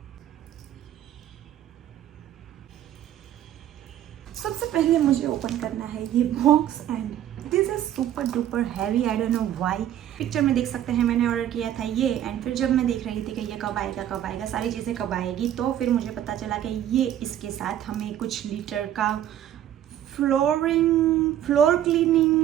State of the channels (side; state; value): left; quieter; 11.4 dB